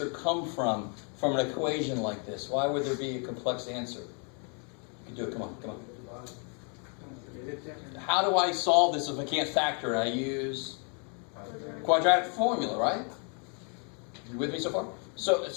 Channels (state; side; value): quieter; right; 38.9 dB